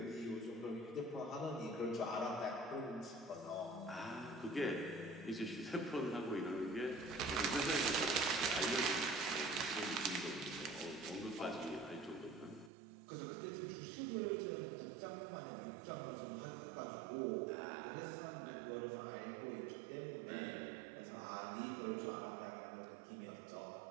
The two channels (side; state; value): left; drops out; at 12.7 s